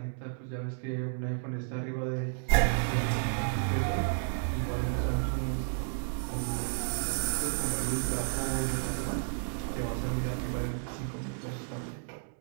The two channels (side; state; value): left; silent; digital silence